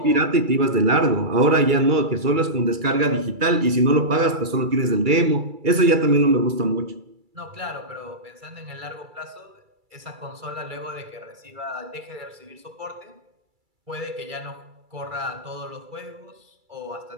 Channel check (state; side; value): late; left; 2.3 ms